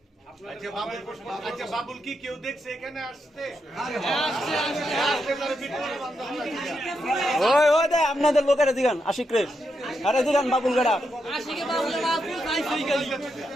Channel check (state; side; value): normal; both; correlation 0.83